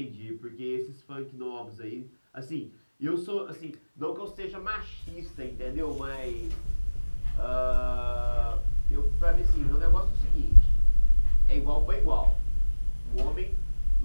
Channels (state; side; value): inverted; both; correlation -1.00